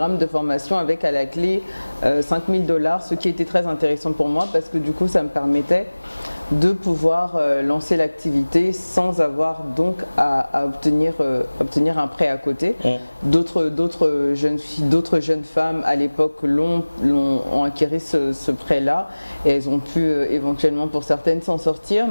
de formation avec à la clé $5000, ce qui était très intéressant pour moi parce que du coup ça me permettait de pouvoir lancer l'activité sans avoir donc à obtenir un prêt à côté. D'autres jeunes filles, d'autres jeunes femmes à l'époque ont acquis ce prêt-là et elles ont pu éventuellement pour certaines s'en sortir,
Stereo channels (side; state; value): both; inverted; correlation -1.00